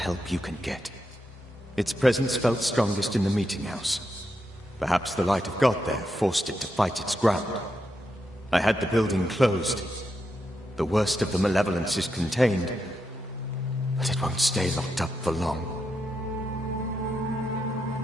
you can get. Its presence felt strongest in the meeting house. Perhaps the light of God there forced it to fight its ground. I had the building closed. The worst of the malevolence is contained, but it won't stay locked up for long.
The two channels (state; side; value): normal; both; correlation 0.84